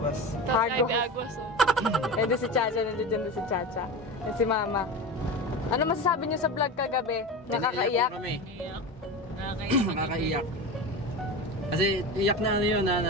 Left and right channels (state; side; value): normal; both; correlation 0.26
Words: Hagwas, oh. Eh, doon si Chacha, nandiyan si Chacha. Yan si Mama. Ano masasabi niyo sa vlog kagabi? Nakakaiyak? Nakakaiyak. Kasi iyak na yun